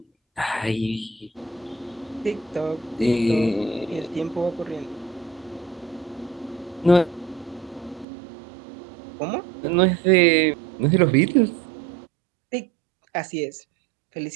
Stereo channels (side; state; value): left; drops out; at 8.1 s